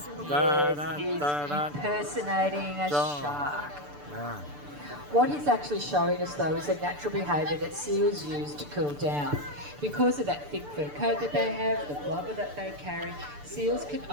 Yes, he's impersonating a shark. What he's actually showing us though is a natural behaviour that seals use to cool down. Because of that thick fur coat that they have, the blubber that they carry, seals can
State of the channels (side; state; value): left; late; 6.8 ms